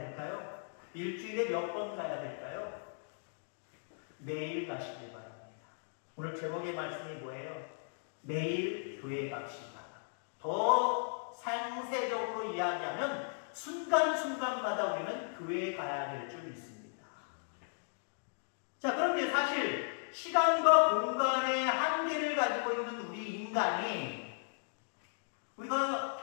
일주일에 몇 번 가야 될까요? 매일 가시길 바랍니다. 오늘 제목의 말씀이 뭐예요? 매일 교회 갑시다. 더 상세적으로 이야기하면 순간순간마다 우리는 교회에 가야 될 줄 믿습니다. 자, 그런데 사실 시간과 공간의 한계를 가지고 있는 우리 인간이 우리가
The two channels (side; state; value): right; silent; digital silence